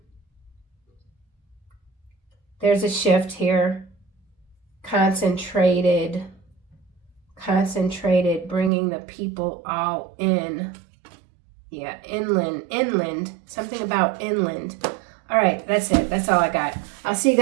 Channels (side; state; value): left; drops out; at 8.7 s